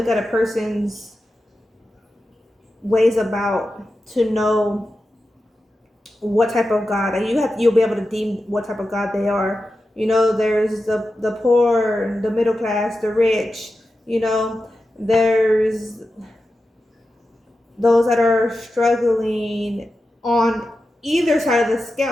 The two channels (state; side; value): normal; both; correlation 0.91